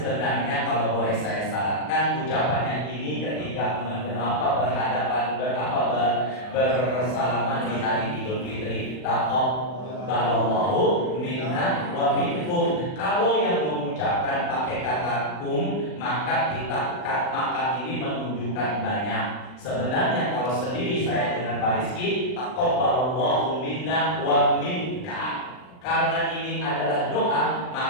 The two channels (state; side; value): late; right; 39 ms